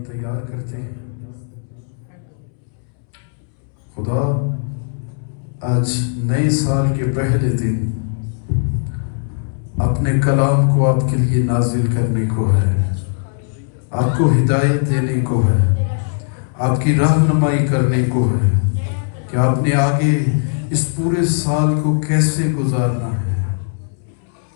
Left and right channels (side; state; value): right; silent; 67 dB below the other